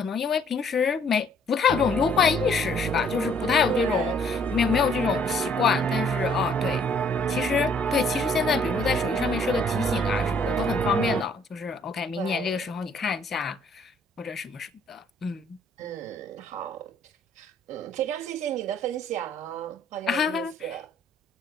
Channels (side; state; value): both; normal; correlation 0.62